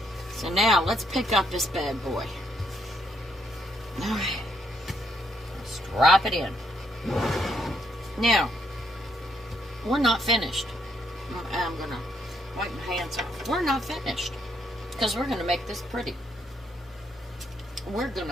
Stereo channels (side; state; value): both; normal; correlation 0.74